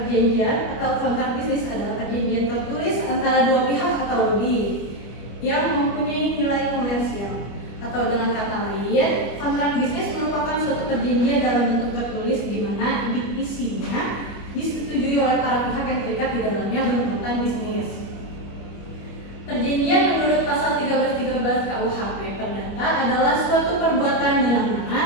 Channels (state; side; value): late; right; 25 ms